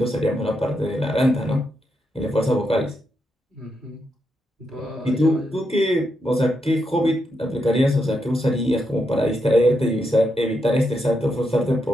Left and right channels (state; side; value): normal; both; correlation 0.82